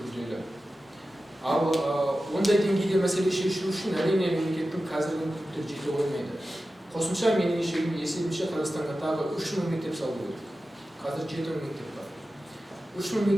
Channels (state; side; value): normal; both; correlation 0.94